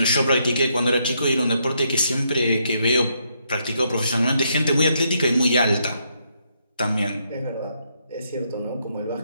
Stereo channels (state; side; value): inverted; both; correlation -0.76